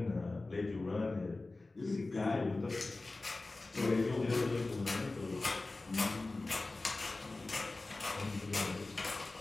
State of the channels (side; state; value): right; quieter; 3.2 dB